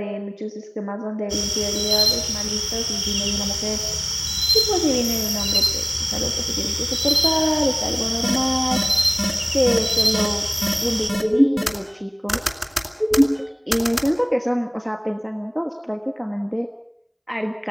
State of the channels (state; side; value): identical; both; correlation 1.00